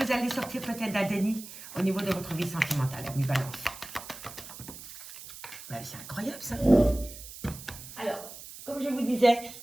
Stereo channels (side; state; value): right; noise; hiss, 14 dB below the sound